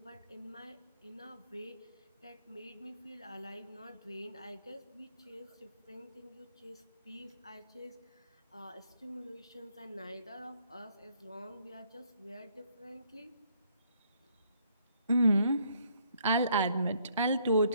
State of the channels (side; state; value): both; inverted; correlation -0.68